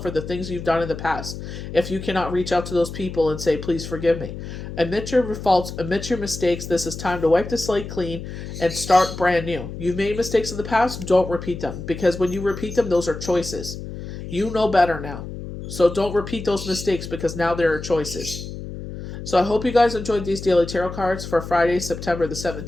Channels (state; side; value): noise; left; hum, 9 dB below the sound